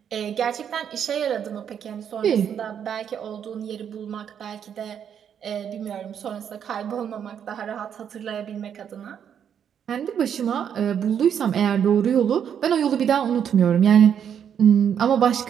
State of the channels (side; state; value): left; quieter; 8.5 dB